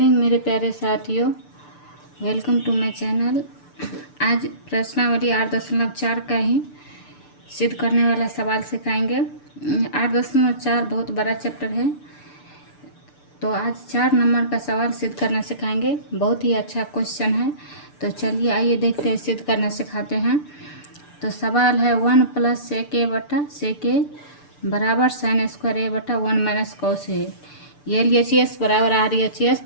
मेरे प्यारे साथियों, वेलकम टू माय चैनल। आज प्रश्नावली 8.4 का ही सिद्ध करने वाला सवाल सिखाएंगे। 8.4 बहुत बड़ा चैप्टर है, तो आज 4 नंबर का सवाल सिद्ध करना सिखाएंगे। बहुत ही अच्छा क्वेश्चन है, तो चलिए आइए देखते हैं, सिद्ध करना सिखाते हैं। तो सवाल है 1 + sec a बटा sec a बराबर sin स्क्वायर a बटा 1 - cos a। LHS बराबर RHS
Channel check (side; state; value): right; late; 6.8 ms